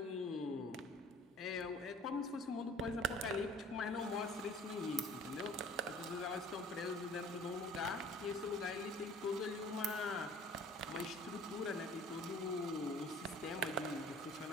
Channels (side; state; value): both; normal; correlation 0.49